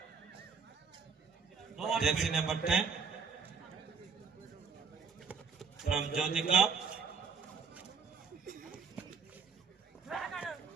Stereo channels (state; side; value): quieter; left; 5.6 dB